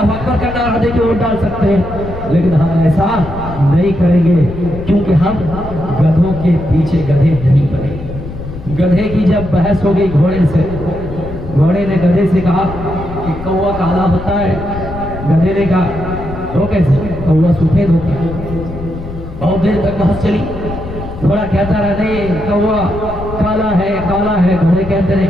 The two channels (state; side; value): noise; left; rumble, 10 dB below the sound